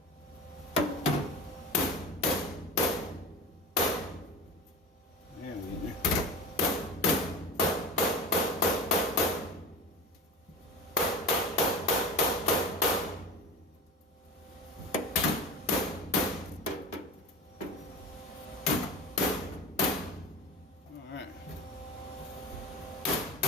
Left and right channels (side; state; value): both; normal; correlation 0.31